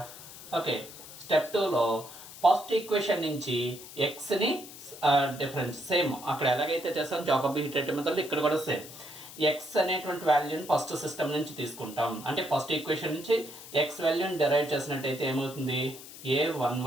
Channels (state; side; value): noise; left; hiss, 15 dB below the sound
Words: ఓకే, స్టెప్ 2లో ఫస్ట్ ఈక్వేషన్ నుంచి ఎక్స్ని డిఫరెన్స్ సేమ్ అక్కడ ఎలాగైతే చేస్తాం జాకోబి హీటరేటివ్ మెథడ్లో ఇక్కడ కూడా సేమ్ ఎక్స్ అనేటువంటి వాల్యూని ఫస్ట్ సిస్టమ్ నుంచి తీసుకుంటాం. అంటే ఫస్ట్ ఈక్వేషన్ నుంచి ఎక్స్ వాల్యూని డెరైవ్ చేసినట్టయితే ఏమవుతుంది?